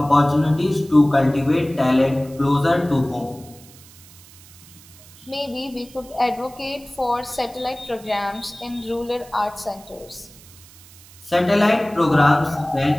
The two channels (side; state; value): right; noise; hiss, 22 dB below the sound